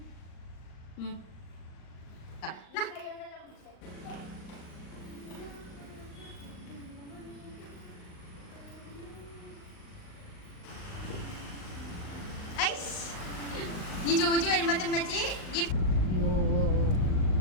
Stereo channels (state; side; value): late; right; 38 ms